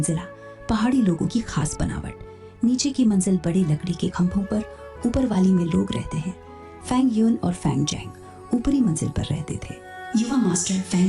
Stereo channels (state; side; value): identical; both; correlation 1.00